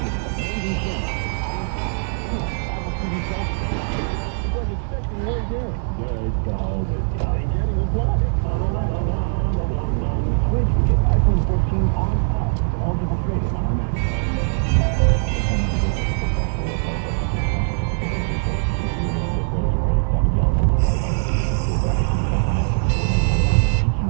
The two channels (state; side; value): silent; left; 63 dB below the other